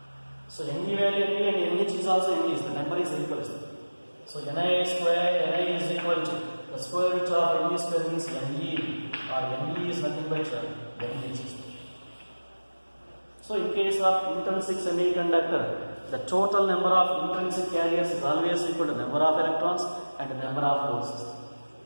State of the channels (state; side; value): inverted; both; correlation -1.00